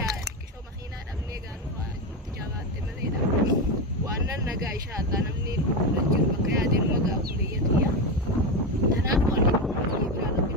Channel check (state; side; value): normal; both; correlation 0.14